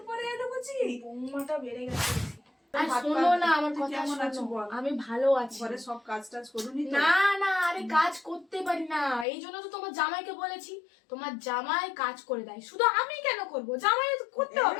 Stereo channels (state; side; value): drops out; right; at 9.2 s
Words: পরে এলু কচি। বৌমাটা বেড়ে গেছে। আর শোনো না আমার কথা, শোনো আমি ভালো আছি। ঘরে সব কাজ টাজ করুনি তো? না না, আরে কাজ করতে পারি না, এই জন্য তো তোমার জামাইকে বলেছি। তোমার জামাই কাজ করে দেয়, শুধু আমি কেন করব? জামাই তো করতে